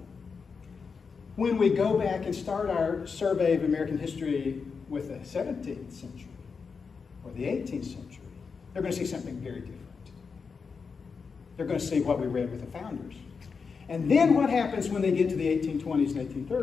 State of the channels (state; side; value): quieter; right; 5.4 dB